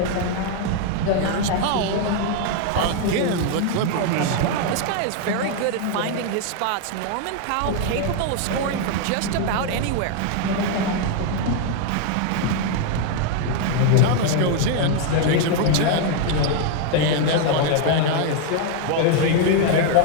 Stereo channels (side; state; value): both; different; correlation 0.01